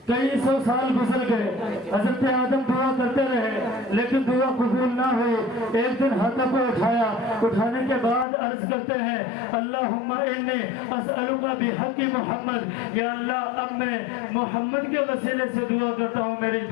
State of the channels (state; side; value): drops out; right; at 8.2 s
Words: کئی سو سال گزر گئے، حضرت آدم دعا کرتے رہے لیکن دعا قبول نہ ہوئی۔ ایک دن ہاتھوں کو اٹھایا، اٹھانے کے بعد عرض کرتے ہیں اللہم انی اسألک بحق محمد، یا اللہ اب میں محمد کے وسیلے سے دعا کرتا ہوں، میری